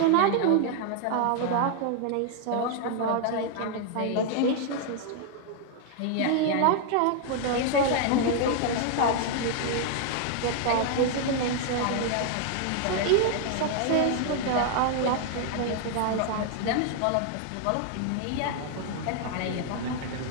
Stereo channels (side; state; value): both; different; correlation 0.00